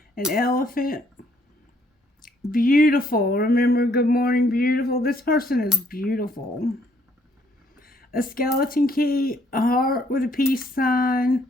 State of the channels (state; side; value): normal; both; correlation 0.67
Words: An elephant. Beautiful. Remember, good morning, beautiful. This person is beautiful. A skeleton key. A heart with a peace sign.